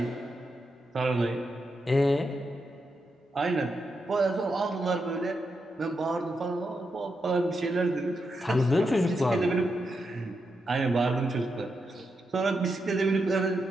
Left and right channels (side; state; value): both; normal; correlation 0.85